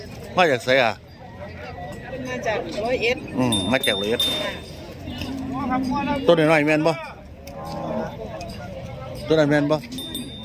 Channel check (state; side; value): identical; both; correlation 1.00